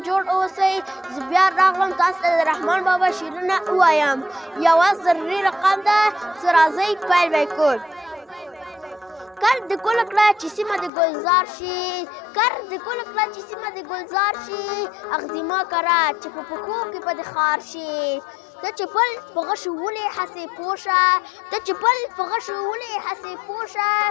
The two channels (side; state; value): right; drops out; at 10.9 s